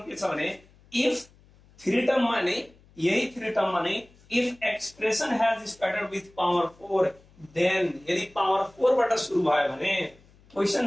के छ भने इफ थ्री टर्म मा नै यही थ्री टर्म मा नै if expression has started with power 4 then यदि पावर 4 बाट सुरु भयो भने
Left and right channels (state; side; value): noise; left; hum, 28 dB below the sound